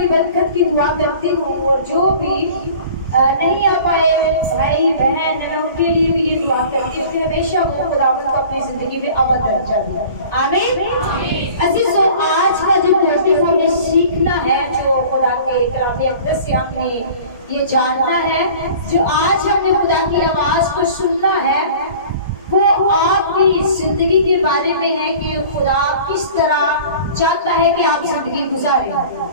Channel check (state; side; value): inverted; both; correlation -0.44